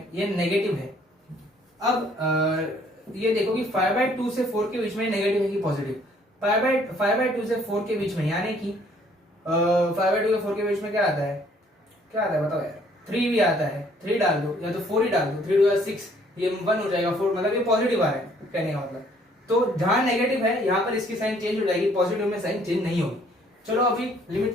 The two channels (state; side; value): normal; both; correlation 0.62